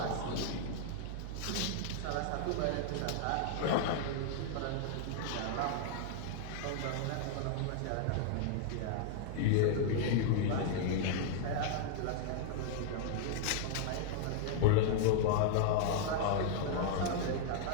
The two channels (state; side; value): different; both; correlation -0.01